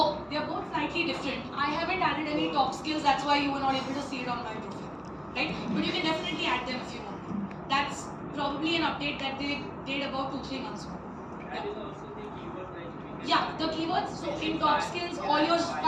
they are both slightly different. I haven't added any top skills, that's why you were not able to see it on my profile, right? But you can definitely add them if you want. That's probably an update that they did about 2-3 months ago. That is also the keyword like Yeah, the keywords. So in top skills, all your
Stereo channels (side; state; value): both; identical; correlation 1.00